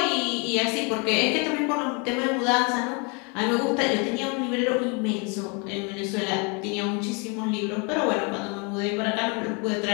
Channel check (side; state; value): right; quieter; 32.9 dB